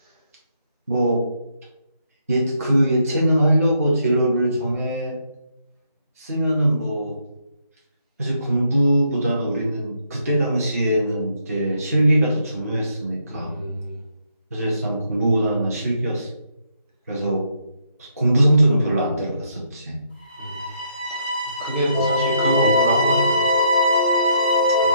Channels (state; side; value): inverted; both; correlation -0.74